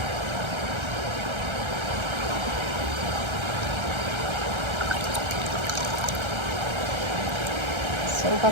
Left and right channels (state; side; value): late; left; 1.3 ms